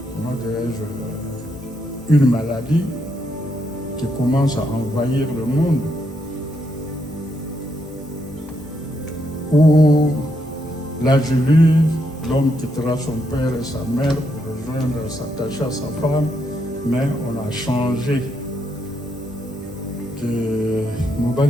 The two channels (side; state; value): both; normal; correlation 0.78